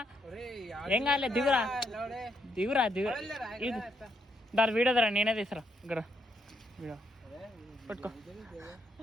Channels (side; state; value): both; normal; correlation 0.77